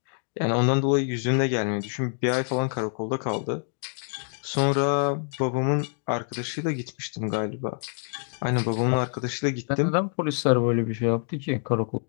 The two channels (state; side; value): silent; right; 61 dB below the other